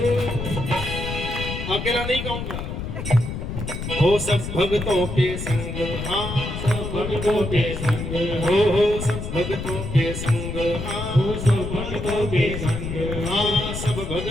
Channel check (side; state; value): left; noise; rumble, 6 dB below the sound